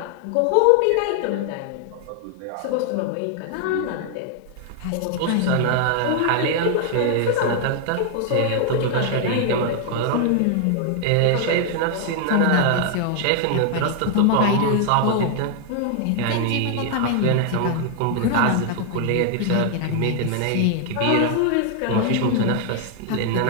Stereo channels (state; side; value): different; both; correlation 0.00